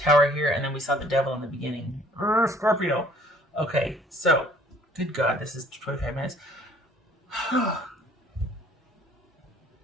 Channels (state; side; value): normal; both; correlation 0.57